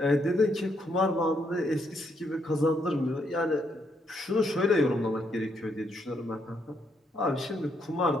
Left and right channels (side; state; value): both; normal; correlation 0.75